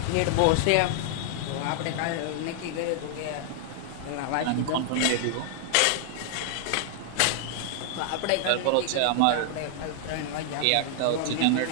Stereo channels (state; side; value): different; both; correlation -0.01